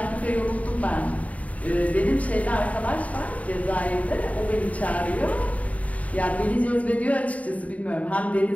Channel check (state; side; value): late; right; 0.069 ms